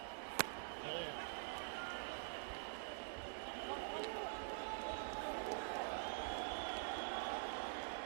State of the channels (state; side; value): silent; left; digital silence